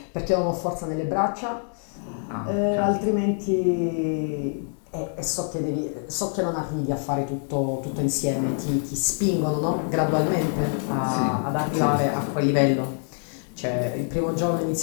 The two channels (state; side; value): silent; right; 57 dB below the other